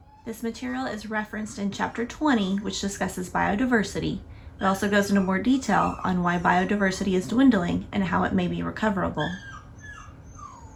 This material is referenced in Chapter 20, which discusses biodiversity. It also goes into more detail on why biodiversity is dwindling and how it may be recoverable.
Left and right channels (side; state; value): both; identical; correlation 1.00